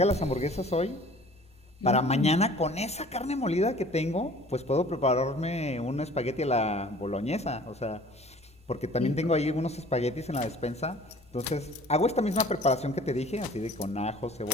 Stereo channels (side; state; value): both; normal; correlation 0.49